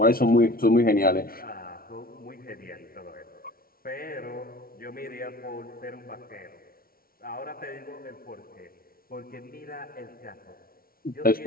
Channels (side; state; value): right; late; 0.43 ms